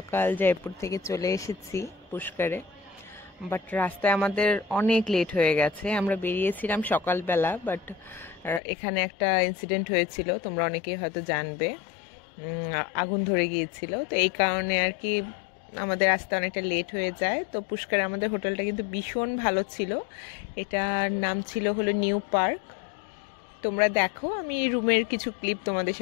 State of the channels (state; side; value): drops out; right; at 8.6 s